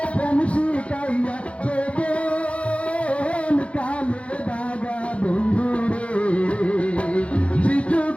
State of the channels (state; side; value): late; right; 0.062 ms